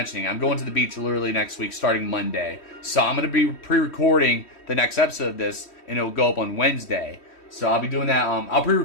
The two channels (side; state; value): right; late; 3.1 ms